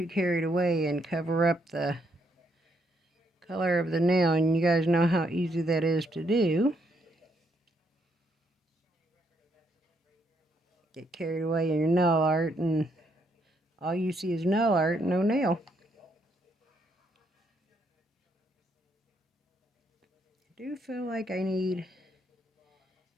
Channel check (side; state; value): both; normal; correlation 0.74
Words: carried away and cover up the color of the nail, and you guys know how easy that is to do. Get carried away in your nail art, and all you see is nail art, no nail. I do feel like I need